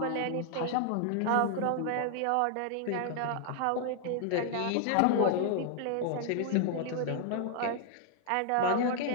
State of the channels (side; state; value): both; different; correlation 0.00